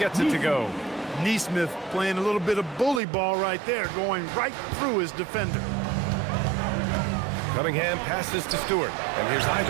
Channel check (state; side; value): drops out; left; at 3.0 s